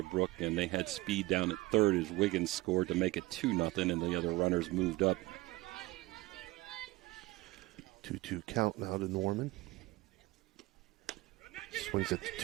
and they had speed down at third as Wiggins scored to make it 2-0, and the other runners moved up. 2-2 count now to Norman. Swings at the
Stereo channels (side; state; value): left; quieter; 19.6 dB